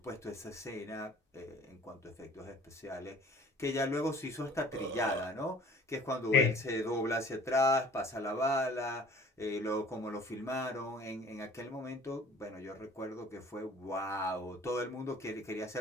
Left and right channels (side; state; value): both; normal; correlation 0.50